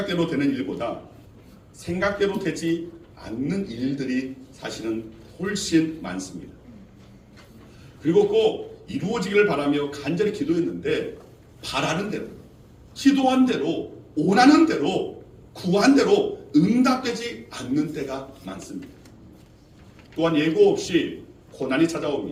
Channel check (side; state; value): both; identical; correlation 1.00